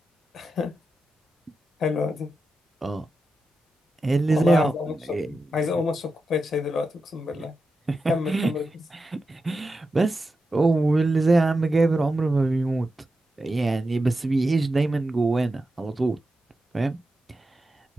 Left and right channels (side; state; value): both; normal; correlation 0.90